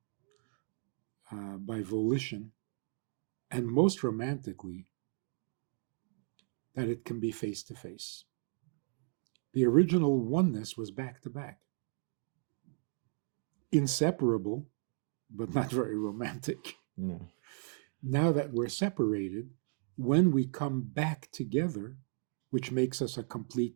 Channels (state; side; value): silent; left; 54 dB below the other